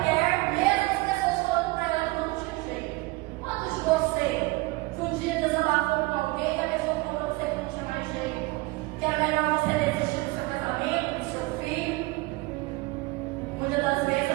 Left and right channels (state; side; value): quieter; left; 22.7 dB